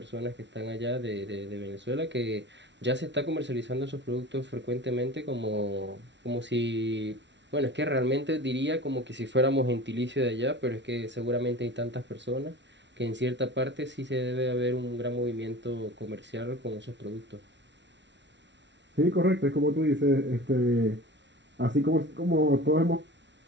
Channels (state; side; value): late; left; 0.52 ms